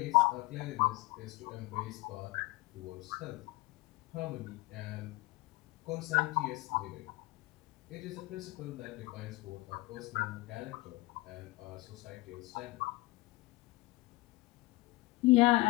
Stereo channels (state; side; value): quieter; right; 21.1 dB